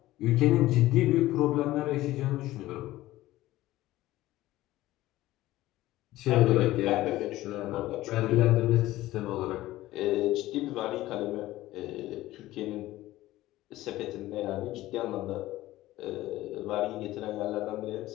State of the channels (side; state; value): right; quieter; 16.3 dB